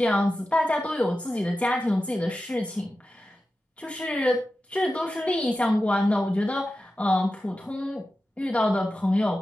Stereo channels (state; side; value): normal; both; correlation 0.93